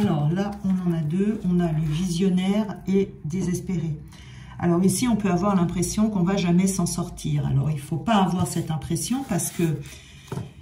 là, on en a deux, on a le visionnaire et désespéré. Alors ici, on peut avoir l'impression qu'on ne va jamais s'en sortir. Alors il ne faut pas avoir cette impression parce que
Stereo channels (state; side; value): identical; both; correlation 1.00